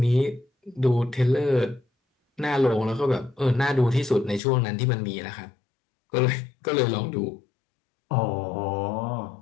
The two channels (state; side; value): drops out; right; at 4.4 s